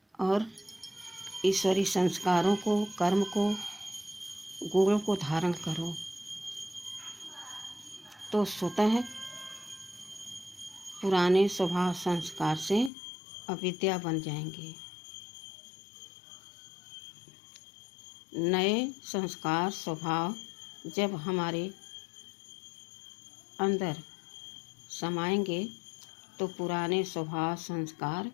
और ईश्वरी संस्कारों को, कर्म को, गुणों को धारण करो तो स्वतः पुराने स्वभाव संस्कार से अविद्या बन जाएंगे। नए संस्कार स्वभाव जब हमारे अंदर समाएंगे तो पुराने स्वभाव संस्कार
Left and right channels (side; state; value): right; drops out; at 12.9 s